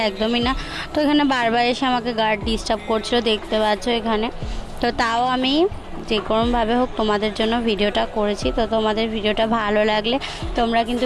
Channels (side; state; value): both; identical; correlation 1.00